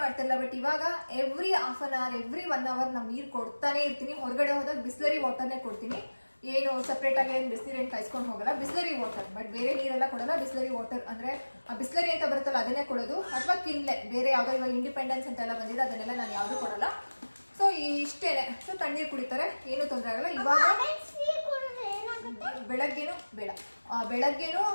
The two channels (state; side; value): inverted; both; correlation -1.00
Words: ಮಾಡ್ತಿರಲ್ಲ. ಬಟ್ ಇವಾಗ every half an hour, every 1 hour ನಾವು ನೀರು ಕೊಡ್ತಾನೆ ಇರ್ತೀನಿ. ಹೊರಗಡೆ ಹೋದಾಗ ಬಿಸ್ಲರಿ ವಾಟರ್ನೇ ಕೊಡ್ತೀನಿ. ಏನು ಸಪ್ರೇಟಾಗಿ ಏನು ಬಿಸಿನೀರೇನು ಕಾಯಿಸ್ಕೊಂಡು ಹೋಗಲ್ಲ, ಬಿಸ್ಲರಿ ವಾಟರ್. ಬಟ್ ಬೇರೆ ನೀರೆಲ್ಲ ಕೊಡಲ್ಲ, ಬಿಸ್ಲರಿ ವಾಟರ್. ಅಂದರೆ ಆ ಬಿಸ್ಲರಿ ಅಂತ ಬರುತ್ತಲ್ಲ ಅದನ್ನೇ ಕೊಡೋದು. ಅಥವಾ ಕಿನ್ಲೆ ಬೇರೆ ಯಾವುದೋ ಇವಾಗ ಇಂಡಿಪೆಂಡೆನ್ಸ್ ಅಂತೆಲ್ಲ ಬಂದಿದೆ, ಅದನ್ನೆಲ್ಲ ನಾನು ಯಾವುದೂ ಕೊಡಲ್ಲ. ಸೊ ಇಷ್ಟೇನೆ. ಸೊ ತಣ್ಣೀರು ಕುಡಿತಾರೆ, ಏನೂ ತೊಂದರೆ ಆಗಲ್ಲ. ಇವಾಗ ಬೆಳಗ್ಗೆನೂ ಬೇಡ, ಬೆಳಗ್ಗೆನೂ